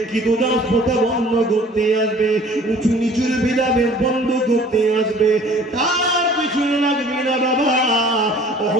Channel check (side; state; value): both; normal; correlation 0.51